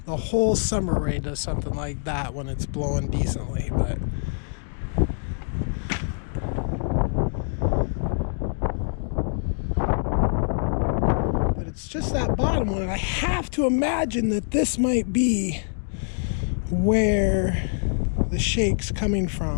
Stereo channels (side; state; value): right; silent; digital silence